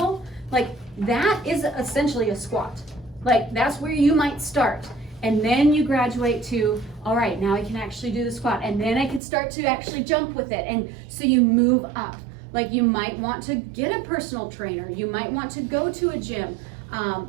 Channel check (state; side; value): drops out; left; at 9.2 s